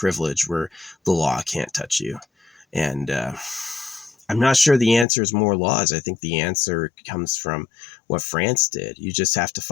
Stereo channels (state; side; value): drops out; right; at 5.1 s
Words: where the law can't touch you. And I'm not sure the answer is more laws. I think the answer comes from what France did. You just have